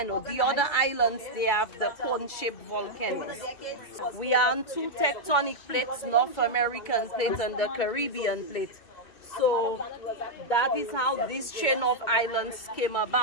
The other islands, they have the cone-shaped volcanoes. We are on 2 tectonic plates, North American plate and the Caribbean plate. So that is how this chain of islands came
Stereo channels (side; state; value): right; late; 2.2 ms